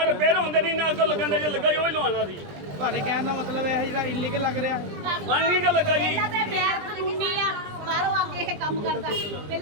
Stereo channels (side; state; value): left; late; 20 ms